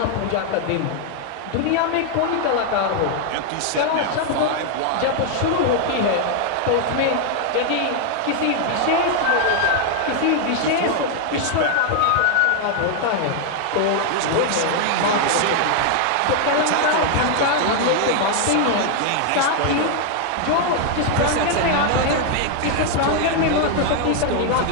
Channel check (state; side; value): different; both; correlation 0.00